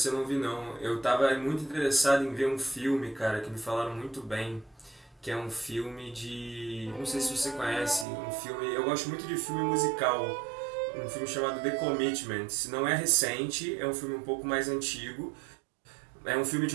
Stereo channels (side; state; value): left; drops out; at 8.1 s